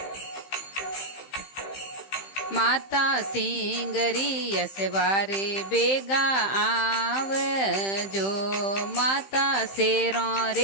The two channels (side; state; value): right; late; 15 ms